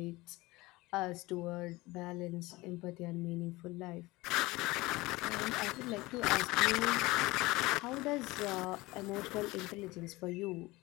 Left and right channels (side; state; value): right; quieter; 21.1 dB